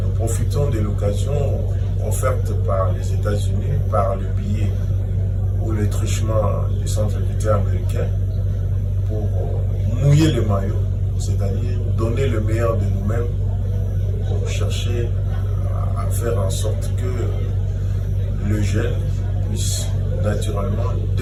Nous profitons de l'occasion offerte par les États-Unis, par le billet ou le truchement du Centre culturel américain pour mouiller le maillot, c'est-à-dire donner le meilleur de nous-mêmes pour chercher à faire en sorte que le jeune puisse naturellement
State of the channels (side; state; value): both; identical; correlation 1.00